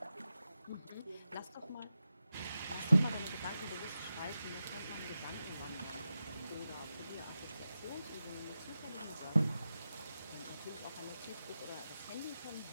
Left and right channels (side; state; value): both; inverted; correlation -0.91